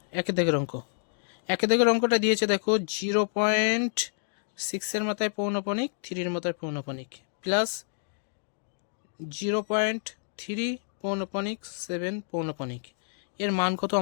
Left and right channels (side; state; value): right; silent; digital silence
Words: একের দাগের অঙ্ক, একের দাগের অঙ্কটা দিয়েছে দেখো 0.6 মাথায় পৌনপণিক, 3 মাথায় পৌনপণিক প্লাস 0.3 পৌনপণিক 7 পৌনপণিক, এর মান কত